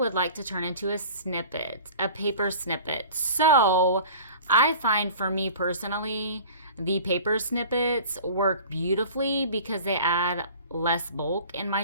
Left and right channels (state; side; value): inverted; both; correlation -0.42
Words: like to turn into a snippet, a paper snippet. So, I find for me personally, the paper snippets work beautifully because they add less bulk in my